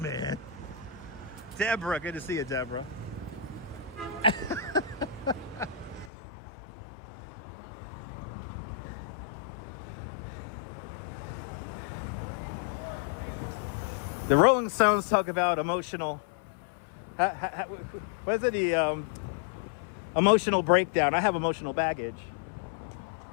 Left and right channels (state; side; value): drops out; right; at 6.1 s